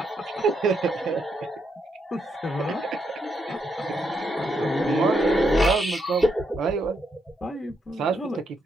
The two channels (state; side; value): normal; both; correlation 0.79